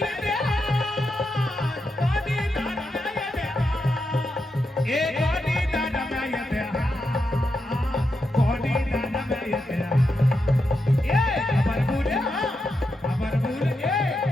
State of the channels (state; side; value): normal; both; correlation 0.86